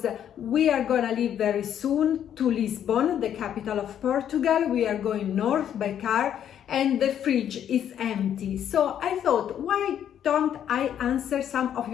we are gonna leave very soon to Lisbon, the capital of Portugal. We are going north by car and the fridge is empty. So I thought, why don't I answer some of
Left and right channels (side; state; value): right; quieter; 9.7 dB